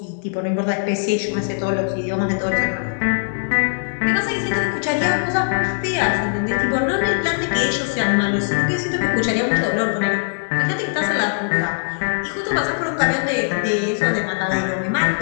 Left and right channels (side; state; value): right; silent; 65 dB below the other